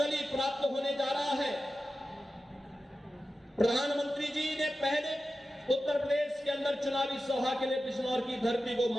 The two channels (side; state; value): both; normal; correlation 0.92